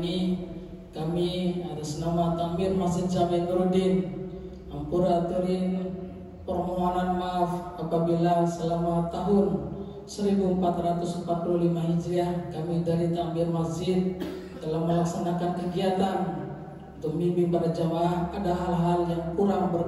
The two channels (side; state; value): both; identical; correlation 1.00